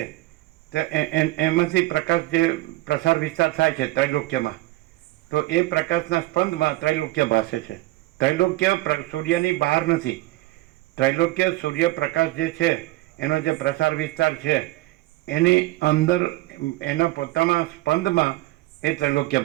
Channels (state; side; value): quieter; left; 18.5 dB